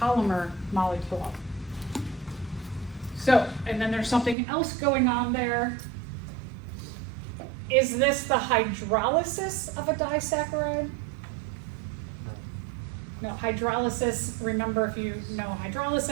polymer molecule. So, and then there's something else going on there. Is this the hydrolysis of a disaccharide? No, hydrolysis, remember if you know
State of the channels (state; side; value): drops out; left; at 4.4 s